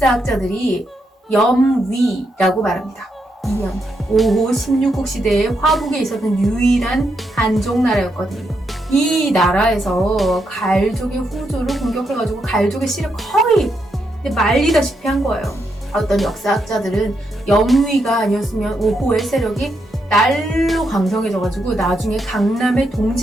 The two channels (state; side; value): normal; both; correlation 0.81